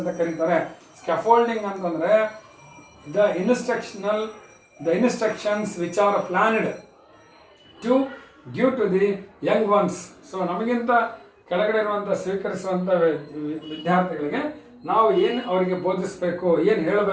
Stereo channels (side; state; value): both; identical; correlation 1.00